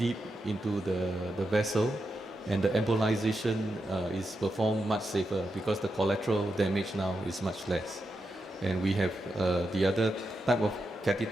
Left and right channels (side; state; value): both; normal; correlation 0.86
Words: into the vessel, and the embolization is performed much safer because the collateral damage now is much less. And we have the other type of